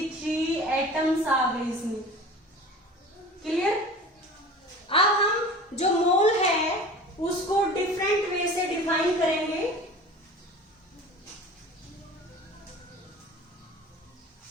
एटम्स आ गए इसमें। क्लियर? अब हम जो मोल है उसको डिफरेंट वे से डिफाइन करेंगे।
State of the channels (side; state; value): both; normal; correlation 0.39